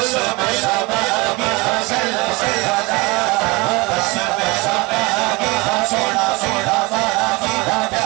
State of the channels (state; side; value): quieter; left; 25.2 dB